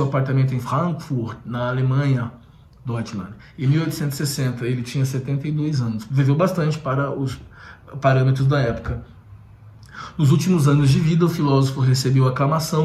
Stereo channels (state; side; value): identical; both; correlation 1.00